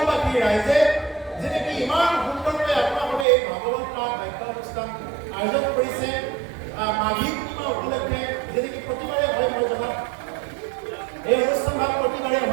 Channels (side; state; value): left; drops out; at 3.2 s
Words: ৰাইজে যেনেকৈ ইমান সুন্দৰকৈ আপোনালোকে এই ভাগৱত পাঠ বাক্য অনুষ্ঠান আয়োজন কৰিছে মাঘী পূৰ্ণিমা উপলক্ষে যেনেকৈ প্ৰতিবাৰে হয় মই জনাত এই অনুষ্ঠানভাগ প্ৰতিবাৰে